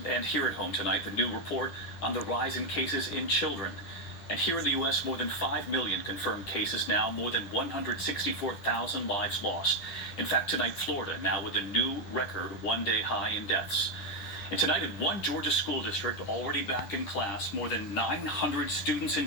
And here at home tonight, the new report on the rise in cases in children. And here in the U.S., more than 5 million confirmed cases now, more than 164,000 lives lost. In fact, tonight, Florida now with a new record one-day high in deaths. And tonight in one Georgia school district already back in class, more than 900 students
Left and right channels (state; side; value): late; right; 10 ms